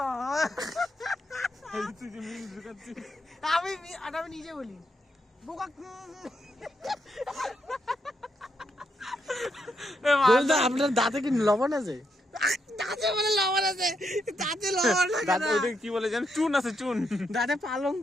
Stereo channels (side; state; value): both; normal; correlation 0.79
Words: আমি নিজে বলি আপনার দাঁতে কি লবণ আছে? দাঁতে বলে লবণ আছে, দাঁতে লবণ থাকে। কি বলে জানেন? চুন আছে, চুন। দাঁতে পালং